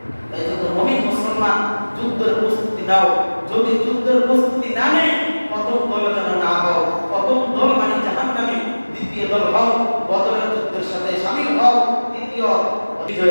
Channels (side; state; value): both; inverted; correlation -1.00